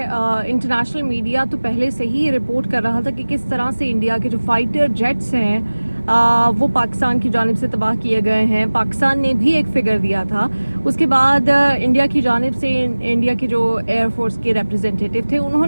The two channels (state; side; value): inverted; both; correlation -1.00